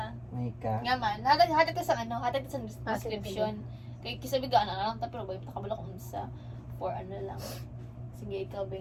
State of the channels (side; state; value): both; identical; correlation 1.00